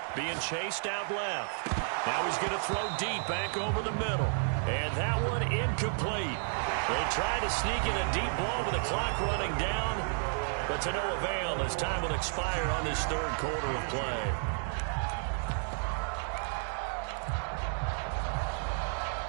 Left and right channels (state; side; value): silent; left; 56 dB below the other